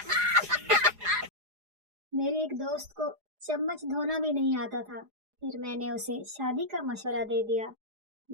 मेरे एक दोस्त को चम्मच धोना भी नहीं आता था, फिर मैंने उसे शादी का मशवरा दे दिया।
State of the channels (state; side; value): late; left; 4.8 ms